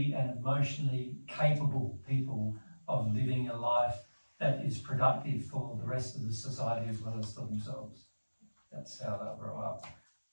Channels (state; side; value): inverted; both; correlation -1.00